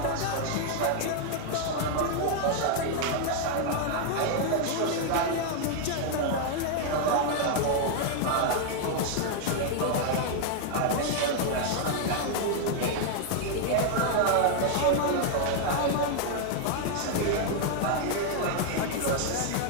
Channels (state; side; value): different; both; correlation 0.00